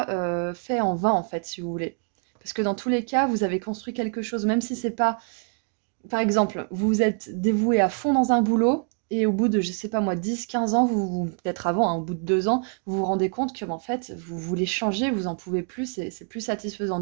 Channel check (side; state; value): left; quieter; 39.2 dB